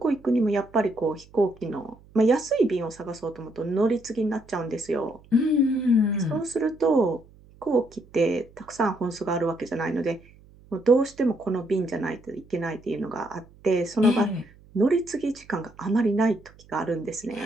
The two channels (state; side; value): noise; right; hum, 26 dB below the sound